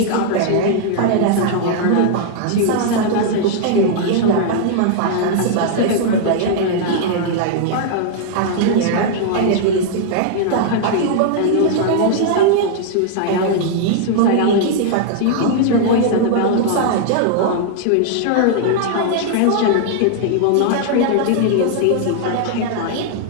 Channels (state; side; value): different; both; correlation -0.01